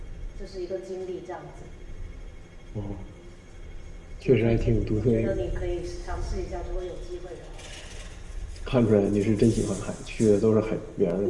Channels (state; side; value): identical; both; correlation 1.00